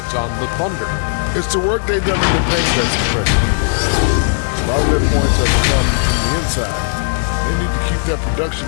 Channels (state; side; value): silent; right; 69 dB below the other